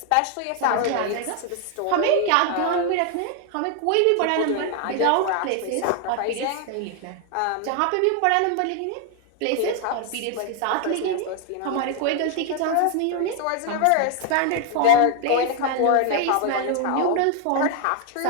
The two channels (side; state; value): both; different; correlation 0.00